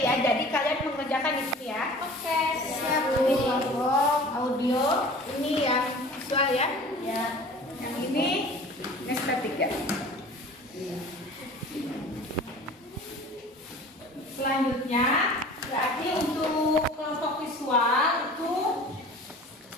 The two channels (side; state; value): both; normal; correlation 0.43